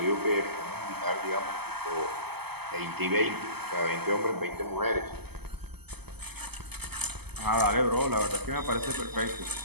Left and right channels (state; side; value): late; left; 0.97 ms